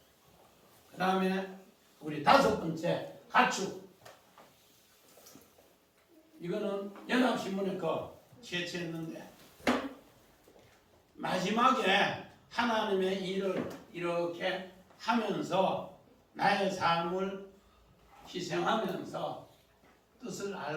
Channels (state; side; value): identical; both; correlation 1.00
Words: 그 다음에 우리 5번째 가축. 이거는 연합신문에 거 채취했는데 마지막에 하나님의 일을 이렇게 하면서 나의 삶을 희생하면서 뜻을